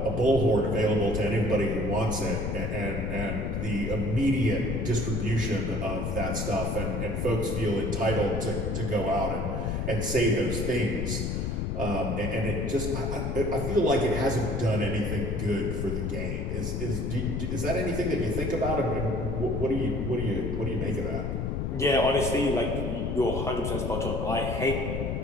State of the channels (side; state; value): left; noise; rumble, 1 dB below the sound